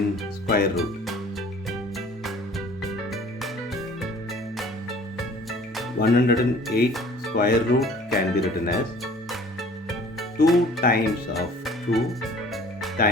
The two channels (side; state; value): both; normal; correlation 0.50